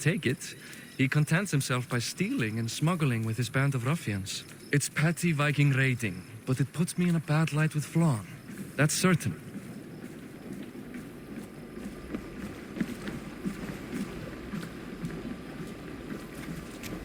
it. He contents himself by stealing and smuggling with his band of ruffians. It's petty Viking raiding, but it puts me in a bad light with Flann. That's certain.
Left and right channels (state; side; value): identical; both; correlation 1.00